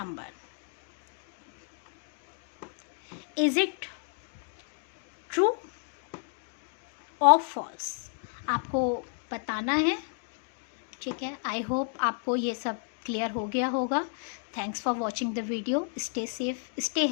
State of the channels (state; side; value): silent; right; digital silence